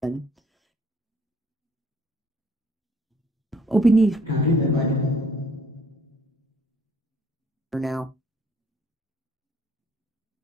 or beneath For now.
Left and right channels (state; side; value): normal; both; correlation 0.60